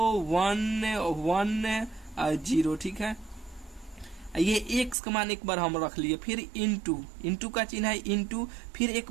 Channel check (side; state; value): left; drops out; at 5.0 s